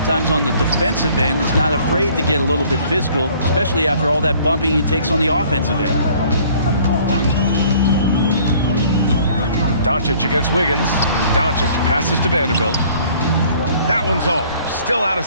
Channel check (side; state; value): both; inverted; correlation -0.56